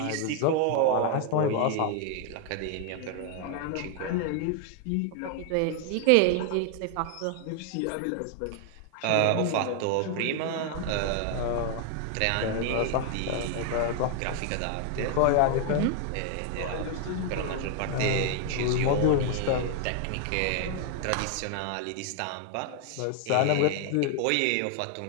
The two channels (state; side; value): different; both; correlation 0.00